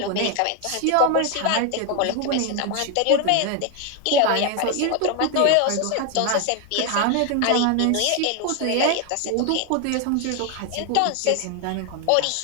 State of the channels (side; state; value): both; different; correlation 0.01